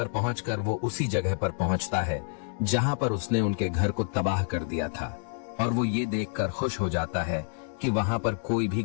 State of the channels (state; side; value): silent; right; 59 dB below the other